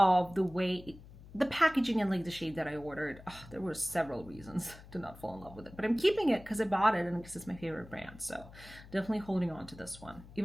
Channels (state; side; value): noise; left; hum, 18 dB below the sound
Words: the way the packaging and like the shade that I ordered. Oh, there were several reasons to not fall in love with it, but I'm keeping it because I bought it and because it's my favorite brand. So definitely holding on to this one,